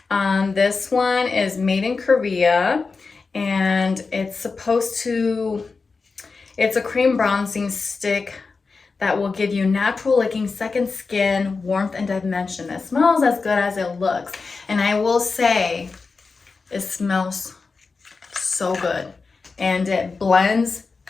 This one is made in Korea, and it's a cream bronzing stick that will give you natural looking second skin, warmth, and dimension. It smells as good as it looks, and I will say it smells so good, and it blends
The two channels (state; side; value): quieter; right; 4.4 dB